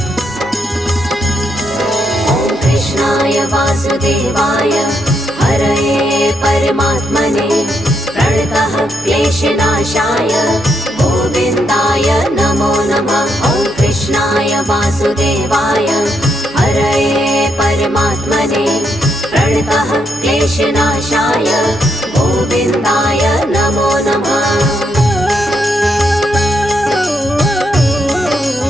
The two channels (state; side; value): noise; right; hum, 24 dB below the sound